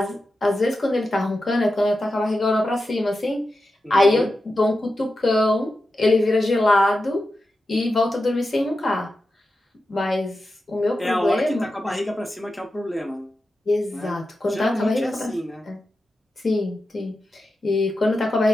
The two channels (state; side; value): normal; both; correlation 0.91